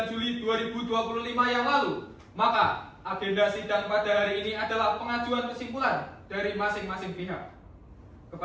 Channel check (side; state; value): both; identical; correlation 1.00